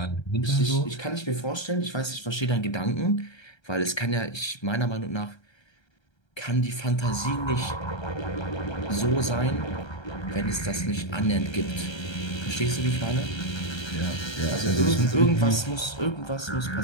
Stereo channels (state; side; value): late; right; 1.3 ms